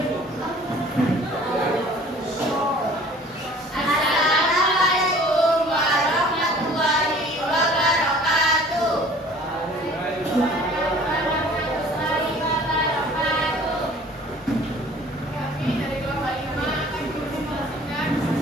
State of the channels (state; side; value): normal; both; correlation 0.50